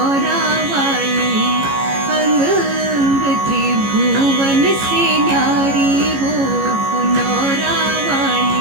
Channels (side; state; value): left; late; 15 ms